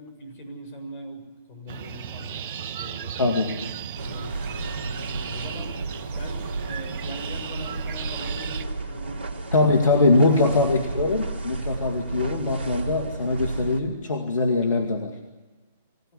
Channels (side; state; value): both; inverted; correlation -0.59